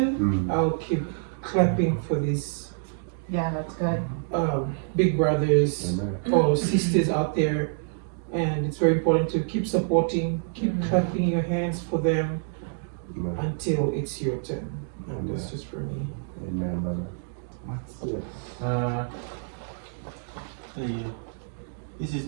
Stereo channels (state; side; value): silent; left; digital silence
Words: I'll keep clapping for these Yeah, that's good. big brothers Amen. or sisters out there, and it's very important to keep supporting, keep clapping your hands for them Amen. until it's your turn. And that's just for me. Amen, brother. Yeah. This is